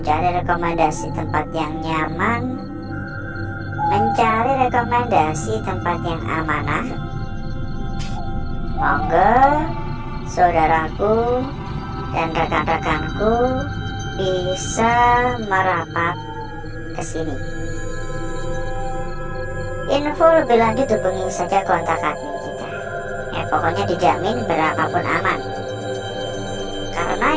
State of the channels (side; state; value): both; identical; correlation 1.00